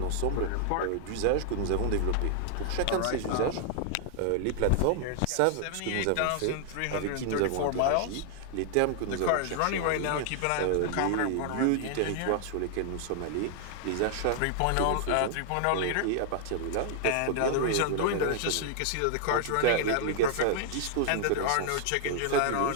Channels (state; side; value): different; both; correlation 0.00